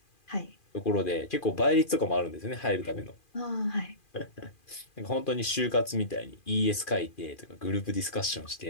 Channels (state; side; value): late; right; 2.4 ms